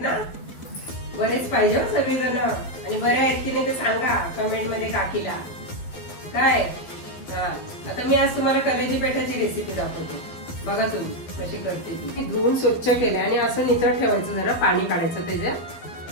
ना? बरेच पाहिजे सगळेजण. आणि बरे आहेत की नाही ते सांगा कमेंट मध्ये काकीला. काय आता मी आज तुम्हाला कलेजी पेठाची रेसिपी दाखवते. बघा तुम्ही कशी करते ती. धुवून स्वच्छ केले आणि असं निचळ ठेवायचं, जरा पाणी काढायचं त्याच्यात.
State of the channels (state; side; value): late; right; 12 ms